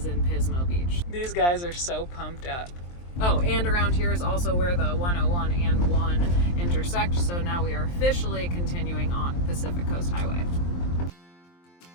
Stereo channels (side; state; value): right; late; 23 ms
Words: in Pismo Beach. These guys are so pumped up. Oh, and around here is also where the 101 and 1 intersect. So now we are officially continuing on Pacific Coast Highway.